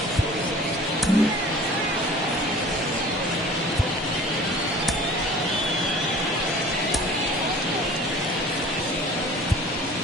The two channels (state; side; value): normal; both; correlation 0.45